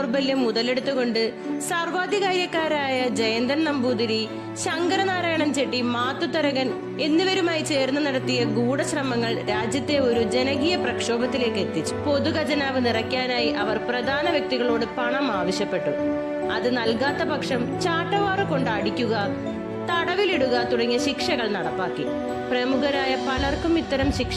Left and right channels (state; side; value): identical; both; correlation 1.00